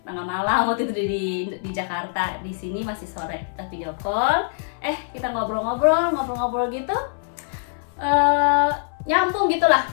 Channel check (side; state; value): right; silent; 63 dB below the other